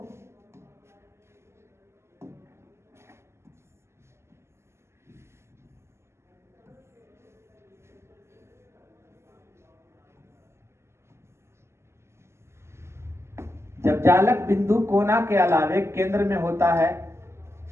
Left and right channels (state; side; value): late; left; 0.13 ms